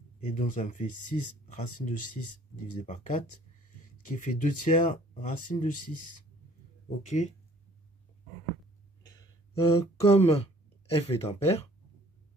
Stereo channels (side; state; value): both; normal; correlation 0.56